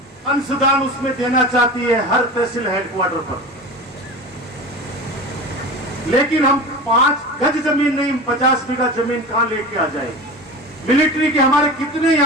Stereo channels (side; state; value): both; normal; correlation 0.31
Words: अंशदान उसमें देना चाहती है हर तहसील हेडक्वार्टर पर, लेकिन हम 5 गज जमीन नहीं, 50 बीघा जमीन कहां लेके आ जाए? मिलिट्री के हमारे कितने